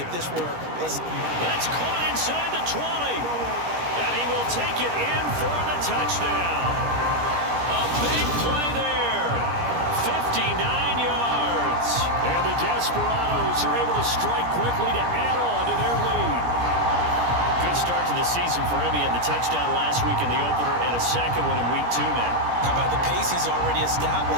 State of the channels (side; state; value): left; late; 17 ms